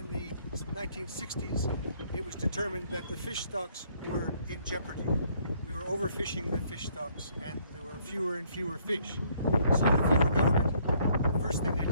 the 1960s, it was determined that the fish stocks were in jeopardy. We were overfishing the fish stocks and there were fewer and fewer fish. So the federal government, the first thing they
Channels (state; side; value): inverted; both; correlation -0.65